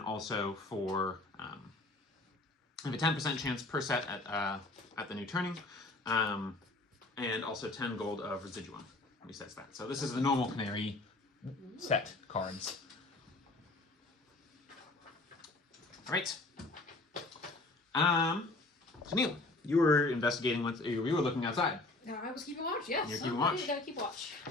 for I have a 10% chance per set at the new turning, and also 10 gold of residuum resets that. So this is the normal canary set cards. All right. So Neil, you were investigating you were looking outside. No, I was keeping watch, yes. You're keeping watch. You gotta keep watch.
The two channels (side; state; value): right; quieter; 3.0 dB